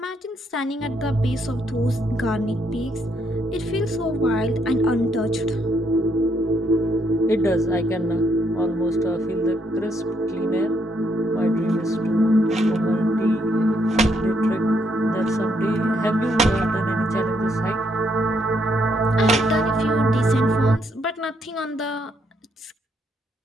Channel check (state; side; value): normal; both; correlation 0.74